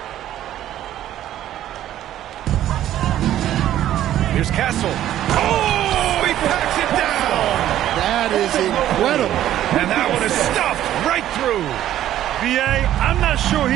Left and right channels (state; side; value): quieter; left; 12.3 dB